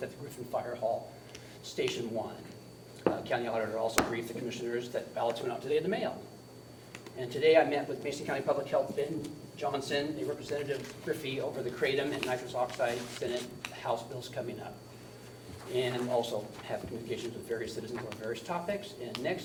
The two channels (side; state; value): both; identical; correlation 1.00